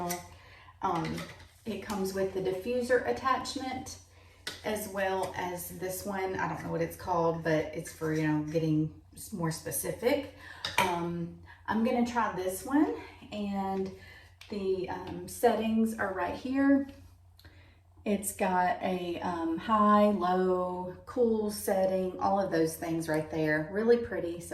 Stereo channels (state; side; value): identical; both; correlation 1.00